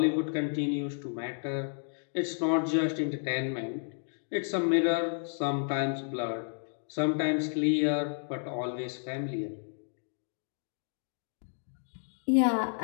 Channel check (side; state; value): right; silent; digital silence